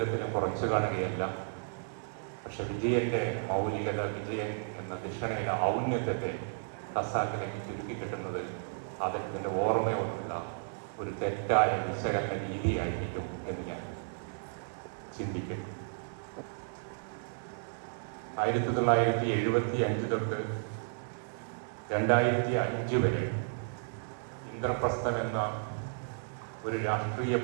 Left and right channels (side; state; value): left; silent; 56 dB below the other